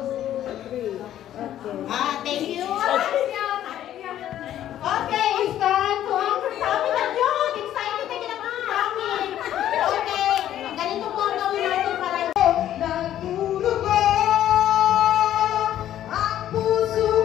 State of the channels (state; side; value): quieter; right; 11.8 dB